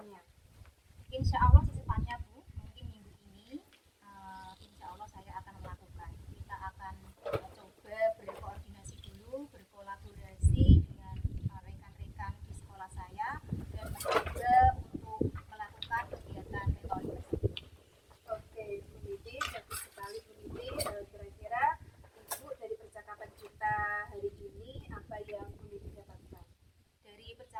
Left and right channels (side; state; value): both; identical; correlation 1.00